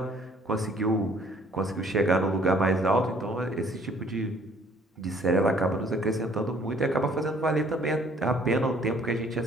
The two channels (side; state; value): both; normal; correlation 0.59